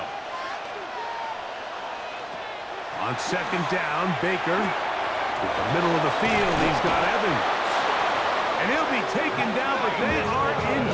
On second down, Baker. To the middle of the field, he's got Evans. And he'll be taken down, but they are in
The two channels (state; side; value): identical; both; correlation 1.00